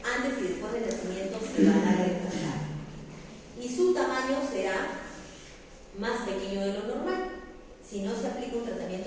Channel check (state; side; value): identical; both; correlation 1.00